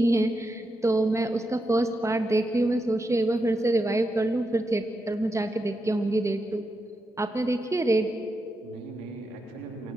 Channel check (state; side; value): normal; both; correlation 0.86